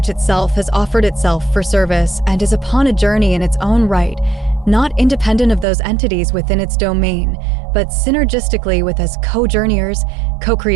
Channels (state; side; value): drops out; left; at 5.7 s